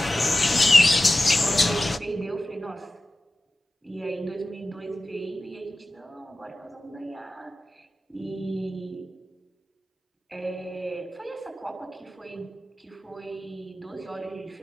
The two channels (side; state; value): both; normal; correlation 0.94